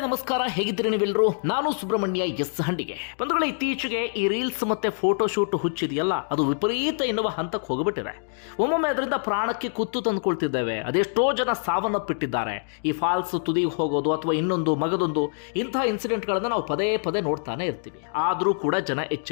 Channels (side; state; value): right; silent; digital silence